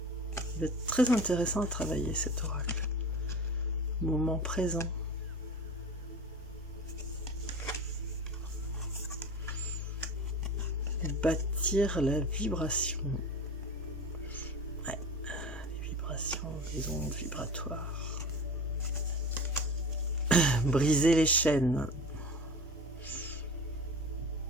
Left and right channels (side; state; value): both; normal; correlation 0.34